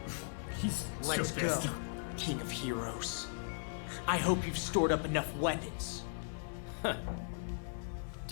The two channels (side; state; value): right; silent; digital silence